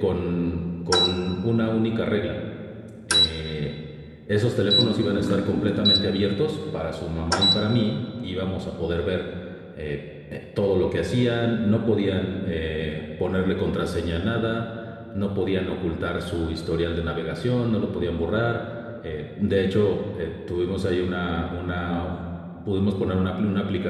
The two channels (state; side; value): identical; both; correlation 1.00